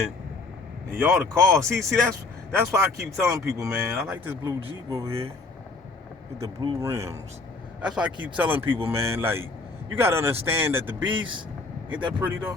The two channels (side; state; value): right; quieter; 3.7 dB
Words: And y'all the cause. See, that's why I keep telling people, man. I like this blue Jeep over here with the blue rims. That's why I keep telling people, man. Like, you gotta understand that the beast ain't that pretty though.